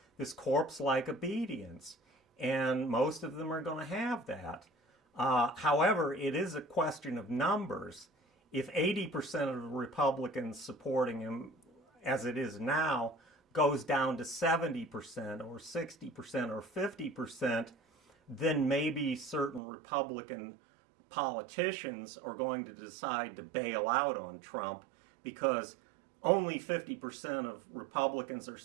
this corpse-like obedience. And most of them are going to have that. However, it is a question of numbers. If 80% of the Republicans supporting him, as it is now, goes down to 70% or 60% or 50%, then maybe certain Republican politicians are going to decide to bail out on Trump, because only 50% of Republicans are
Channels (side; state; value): left; drops out; at 19.6 s